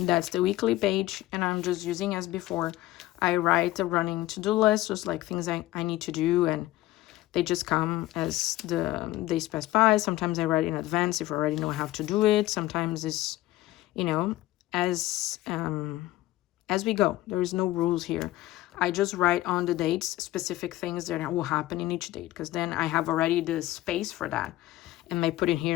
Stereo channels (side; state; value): right; quieter; 16.4 dB